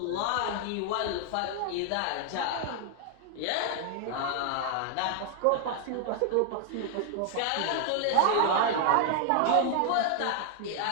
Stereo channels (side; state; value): both; different; correlation 0.00